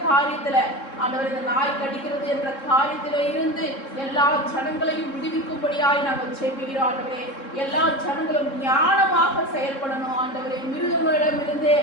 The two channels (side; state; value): right; late; 3.7 ms